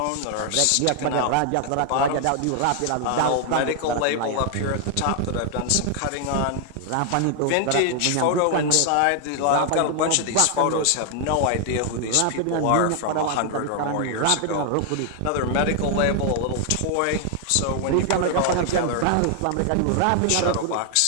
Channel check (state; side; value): different; both; correlation 0.00